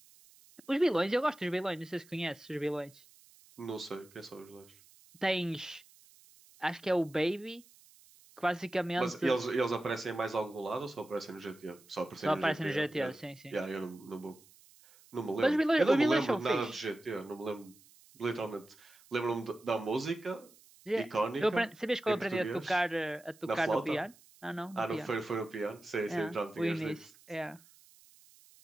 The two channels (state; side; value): noise; right; hiss, 26 dB below the sound